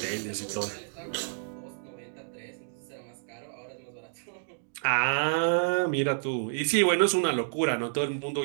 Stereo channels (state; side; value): silent; left; digital silence